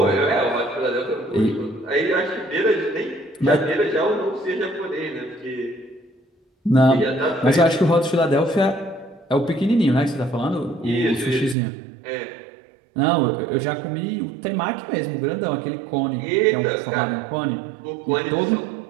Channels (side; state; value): left; drops out; at 11.6 s